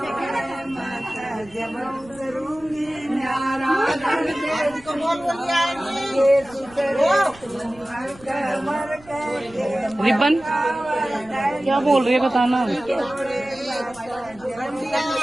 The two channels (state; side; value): noise; right; rumble, 24 dB below the sound